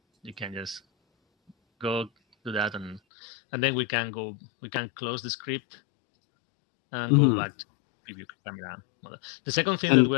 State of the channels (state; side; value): drops out; right; at 3.0 s